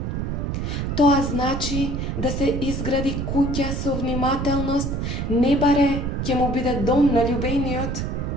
Тоа значи да се изгради куќа со внимателност, не баре ќе му биде дом на љубениот.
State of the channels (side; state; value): right; noise; rumble, 2 dB below the sound